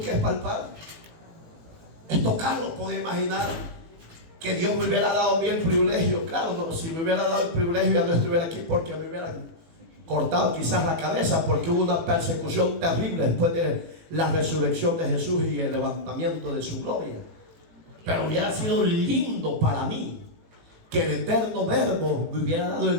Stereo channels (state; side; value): late; left; 18 ms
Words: es palpar? Es tocarlo. Podía imaginar que Dios me hubiera dado a mí el privilegio. Claro, no, si me hubiera dado el privilegio ya no estuviera aquí, porque me hubieran cortado quizás la cabeza, porque hubo una persecución terrible después de la resurrección de Jesús y el levantamiento de su gloria. Pero hubiera sido lindo para mí que el eterno Verbo me hubiera dado